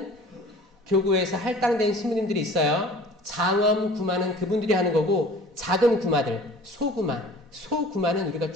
교구에서 할당된 신부님들이 있어요. 장엄 구마는 그분들이 하는 거고 작은 구마들, 소구마는 우리가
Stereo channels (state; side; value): normal; both; correlation 0.46